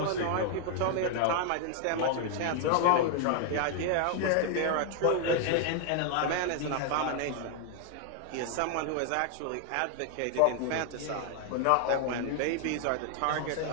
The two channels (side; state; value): both; different; correlation 0.00